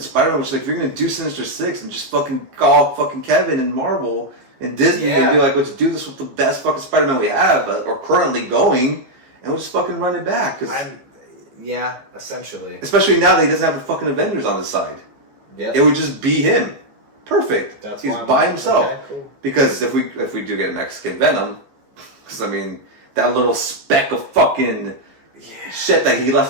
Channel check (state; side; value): late; left; 15 ms